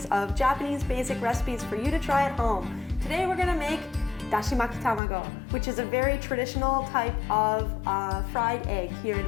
of Japanese basic recipes for you to try at home. Today we're gonna make Dashimaki Tamago, which is a very traditional type of fried egg here in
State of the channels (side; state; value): right; drops out; at 5.0 s